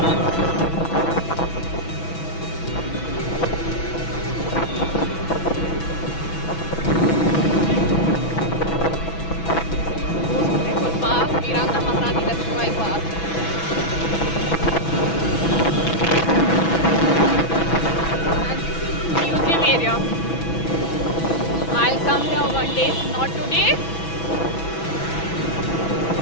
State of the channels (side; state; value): right; late; 6.1 ms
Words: Area. I'll come here one day, not today.